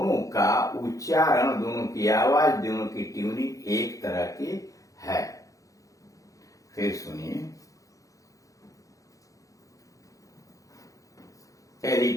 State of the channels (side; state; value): right; late; 0.16 ms